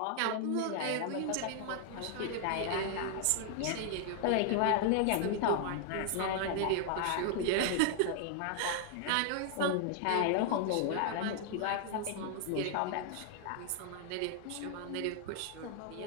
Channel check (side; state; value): both; different; correlation 0.00